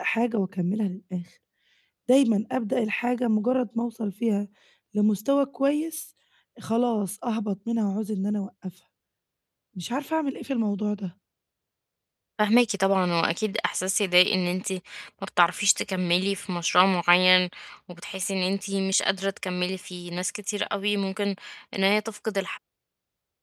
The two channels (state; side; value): identical; both; correlation 1.00